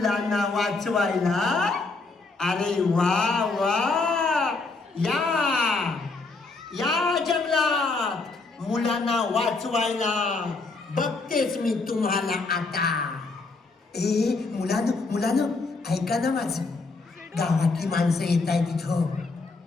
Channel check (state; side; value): quieter; right; 3.8 dB